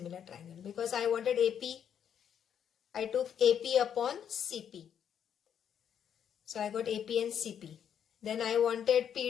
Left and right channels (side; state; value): right; quieter; 8.7 dB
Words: triangle. Because I wanted AP, I took AP upon CP. So I got AP and CP. Then I wanted